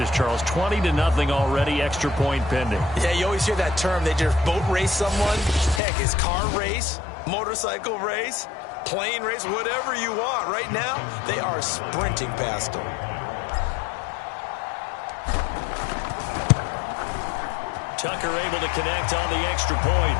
Charles. 20-0 already, extra point pending. Yeah, you always hear that term. They just boat race someone. Heck, it's car race, motorcycle race, plane race, whatever you want. Right now, they are sprinting past them. Tucker able to connect on the extra point,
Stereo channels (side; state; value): right; drops out; at 5.8 s